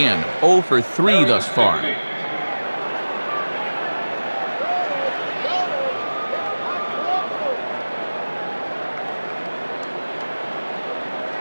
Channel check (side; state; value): both; inverted; correlation -1.00